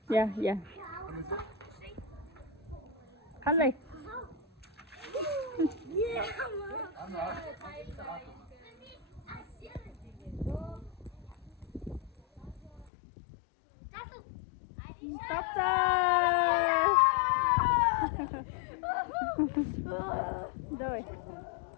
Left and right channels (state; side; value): drops out; right; at 12.9 s